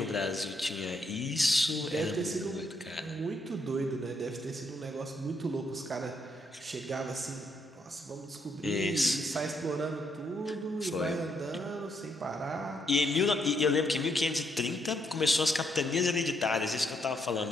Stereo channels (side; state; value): both; normal; correlation 0.75